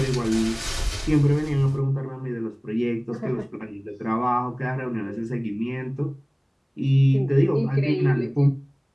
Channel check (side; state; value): both; identical; correlation 1.00